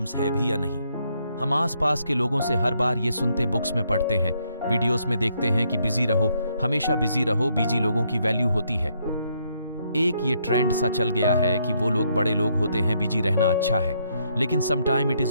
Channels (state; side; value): inverted; both; correlation -0.74